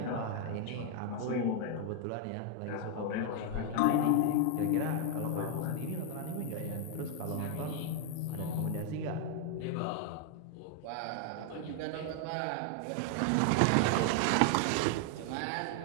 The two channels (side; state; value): both; different; correlation 0.00